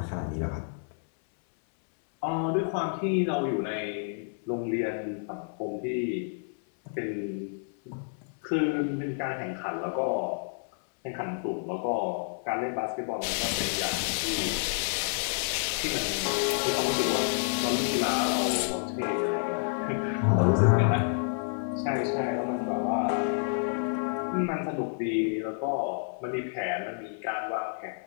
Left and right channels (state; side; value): silent; right; 58 dB below the other